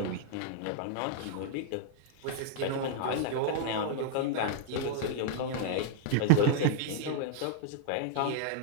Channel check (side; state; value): both; different; correlation -0.01